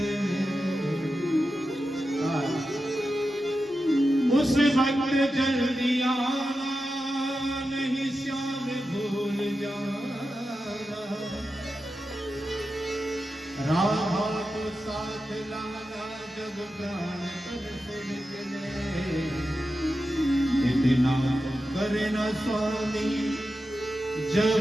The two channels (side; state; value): both; normal; correlation 0.91